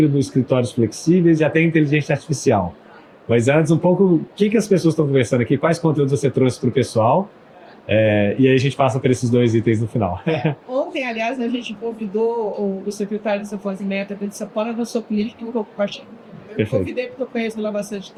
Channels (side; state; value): both; identical; correlation 1.00